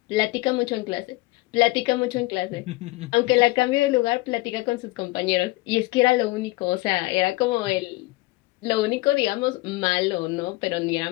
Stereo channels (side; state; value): right; quieter; 21.1 dB